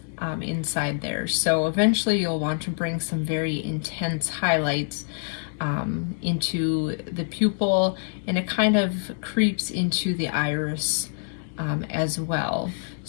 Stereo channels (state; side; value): silent; right; digital silence